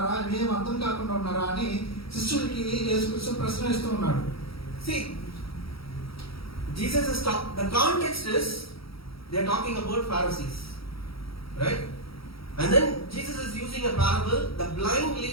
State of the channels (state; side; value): late; right; 0.75 ms